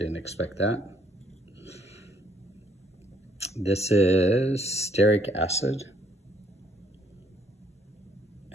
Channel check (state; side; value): normal; both; correlation 0.67